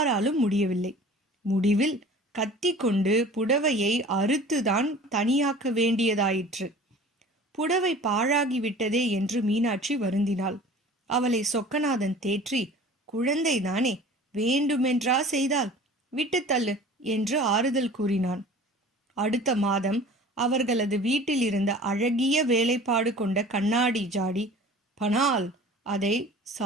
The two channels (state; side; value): normal; both; correlation 0.43